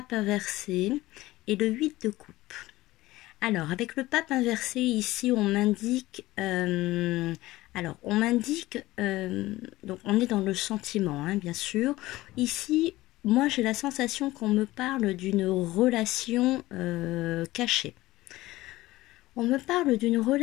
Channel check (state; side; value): quieter; right; 17.8 dB